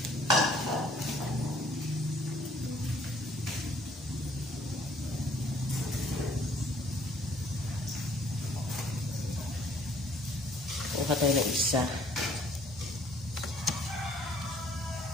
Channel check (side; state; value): both; normal; correlation 0.60